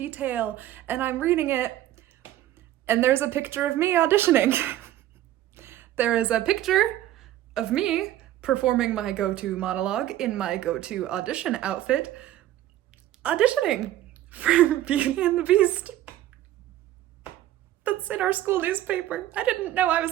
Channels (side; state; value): left; quieter; 13.6 dB